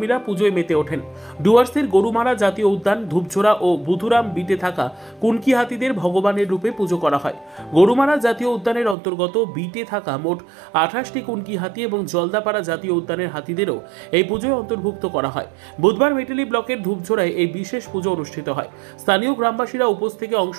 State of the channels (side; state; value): left; drops out; at 9.0 s